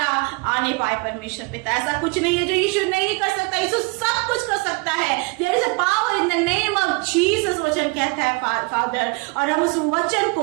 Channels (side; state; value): left; quieter; 28.7 dB